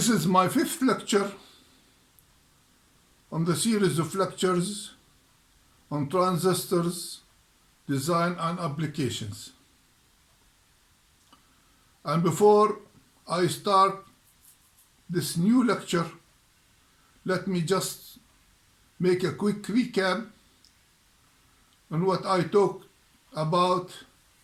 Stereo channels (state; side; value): identical; both; correlation 1.00